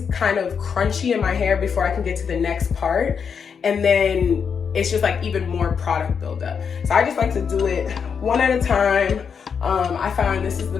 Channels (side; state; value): right; quieter; 6.6 dB